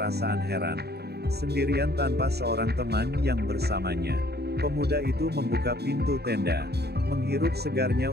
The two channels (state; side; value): late; left; 0.47 ms